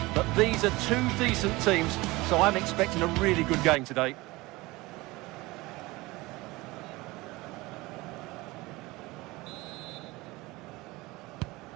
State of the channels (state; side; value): quieter; left; 21.3 dB